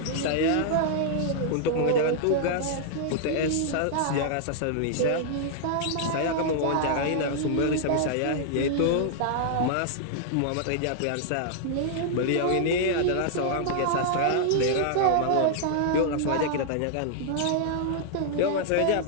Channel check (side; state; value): both; different; correlation -0.01